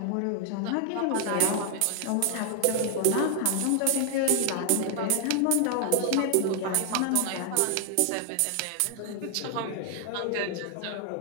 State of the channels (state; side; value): different; both; correlation 0.00